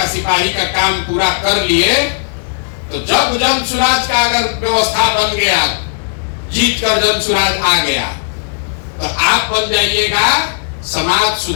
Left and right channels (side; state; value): right; silent; digital silence